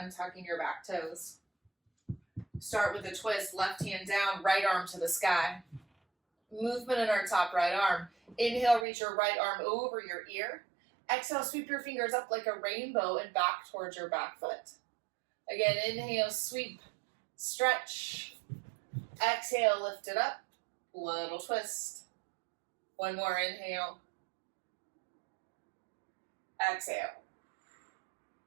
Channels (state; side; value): drops out; left; at 8.8 s